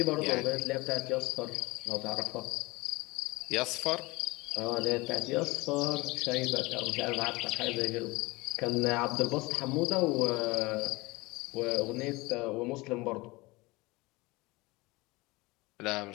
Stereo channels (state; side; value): quieter; right; 22.9 dB